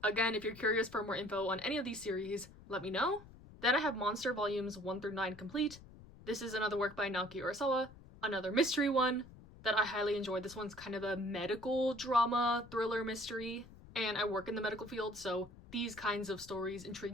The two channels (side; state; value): left; noise; rumble, 19 dB below the sound